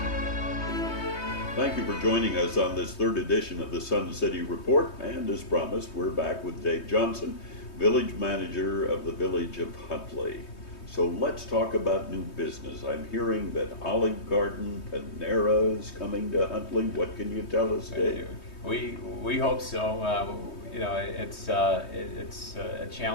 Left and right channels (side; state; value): right; late; 3.2 ms